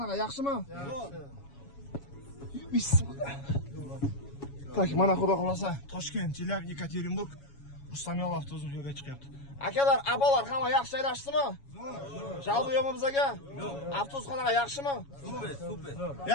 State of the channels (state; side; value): late; right; 7.2 ms